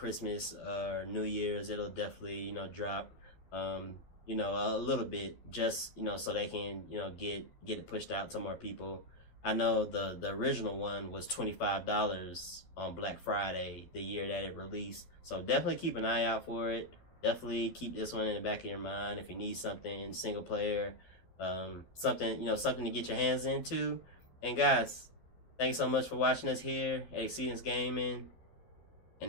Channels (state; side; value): late; right; 12 ms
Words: or New Year's, it'll definitely drop a little bit, just so they can get it pushed out to more people. I know the original one was $25 on Black Friday the year that it released, so definitely keep an eye out for it. Definitely keep this one in the back of your mind if you need something single player, something to get your hands into. And guys, thanks so much for watching us here at Exceedance Gaming.